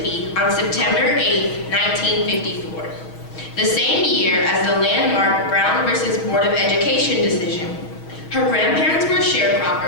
on September 8, 1954, the same year as the landmark Brown versus Board of Education decision. Her grandparents were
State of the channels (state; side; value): late; right; 6.3 ms